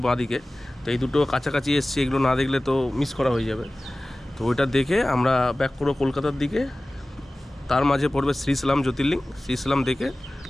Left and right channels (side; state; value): both; normal; correlation 0.97